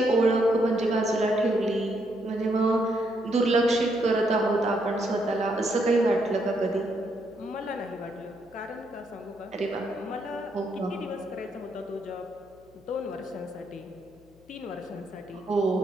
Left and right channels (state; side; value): noise; left; hum, 28 dB below the sound